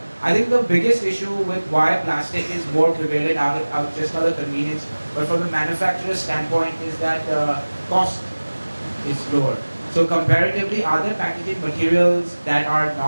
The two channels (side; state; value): both; inverted; correlation -1.00